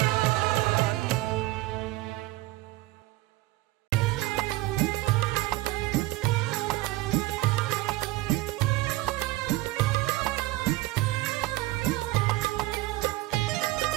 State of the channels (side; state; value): left; quieter; 18.5 dB